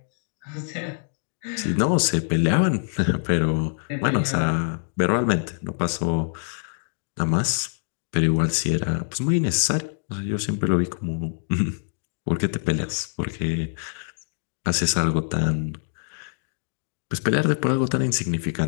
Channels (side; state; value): right; silent; digital silence